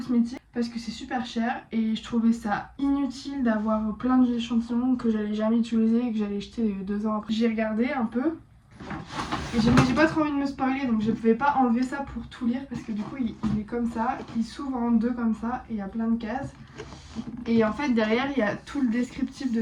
parce que c'est super cher et je trouvais ça inutile d'avoir plein d'échantillons que j'allais jamais utiliser et que j'allais jeter 2 ans après. J'ai regardé un peu Et j'ai pas trop envie de me spoiler, donc je pouvais pas enlever ça pour tout lire parce que du coup il est comme ça, il s'ouvre en deux comme ça et il y a plein de cases. Et en fait derrière il y a tout le descriptif de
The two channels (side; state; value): both; identical; correlation 1.00